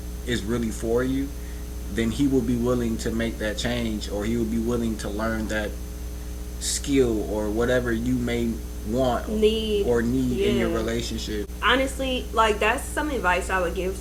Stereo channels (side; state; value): both; identical; correlation 1.00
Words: is really for you, then he will be willing to make that change, or he will be willing to learn that skill or whatever you may want need in your relationship. Honestly, like, that's some advice I would give